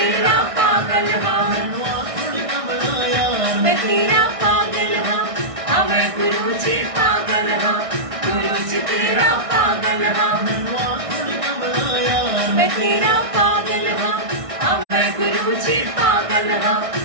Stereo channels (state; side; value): late; left; 1.6 ms